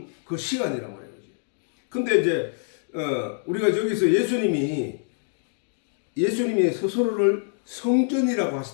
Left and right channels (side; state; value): right; silent; 61 dB below the other